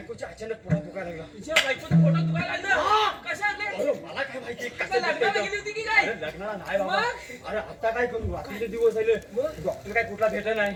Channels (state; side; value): identical; both; correlation 1.00